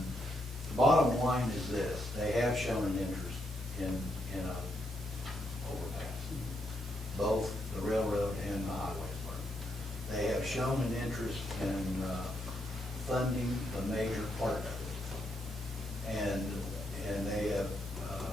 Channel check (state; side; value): normal; both; correlation 0.78